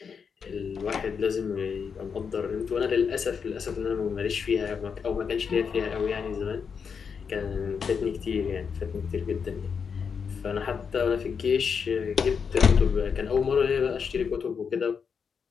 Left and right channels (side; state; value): right; quieter; 6.3 dB